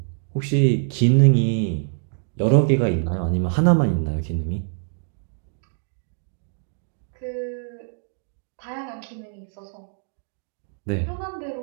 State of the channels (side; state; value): left; silent; 62 dB below the other